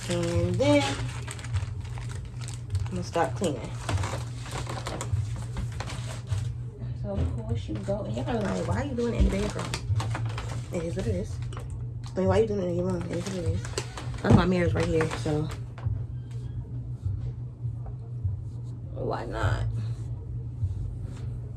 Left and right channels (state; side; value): identical; both; correlation 1.00